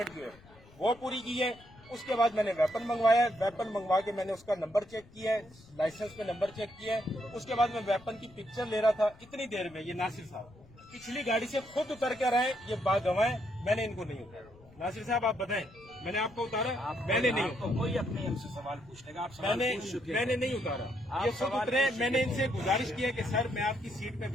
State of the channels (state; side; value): noise; left; rumble, 24 dB below the sound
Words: जो है वो पूरी की है। उसके बाद मैंने वेपन मंगवाया है, वेपन मंगवा के मैंने उसका नंबर चेक किया है, लाइसेंस पे नंबर चेक किया है। उसके बाद मैं वेपन की पिक्चर ले रहा था। इतनी देर में ये नासिर साहब पिछली गाड़ी से खुद उतर कर आए, ये बागवाए, मैंने इनको नहीं उतारा। नासिर साहब आप बताएं, मैंने आपको उतारा? मैंने नहीं उतारा। कोई अपने हमसे सवाल पूछने का, आप मैंने नहीं उतारा, ये खुद उतरे। मैंने इनसे गुजारिश किया कि सर मैं आपकी सीट पे